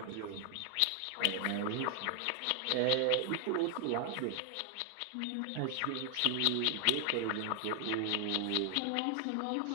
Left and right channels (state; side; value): different; both; correlation 0.00